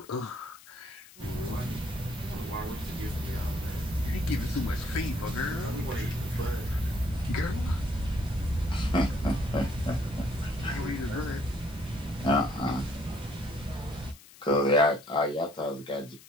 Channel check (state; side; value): noise; left; hiss, 21 dB below the sound